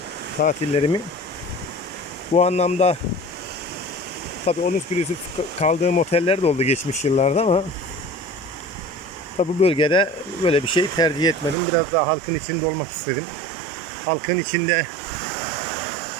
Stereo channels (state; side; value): drops out; left; at 11.6 s